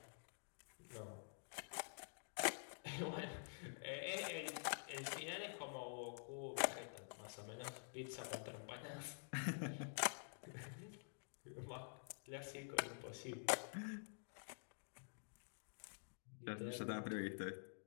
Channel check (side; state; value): right; silent; digital silence